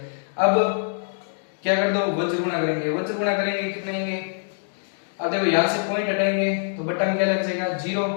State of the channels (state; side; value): silent; right; digital silence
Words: अब क्या कर दो वज्र गुणा करेंगे, वज्र गुणा करेंगे कितने आएंगे अब देखो यहां से पॉइंट हटाएंगे तो बटा में क्या लग जाएगा 0,